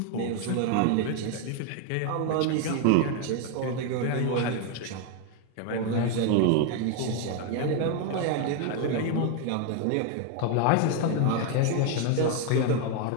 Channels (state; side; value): different; both; correlation 0.01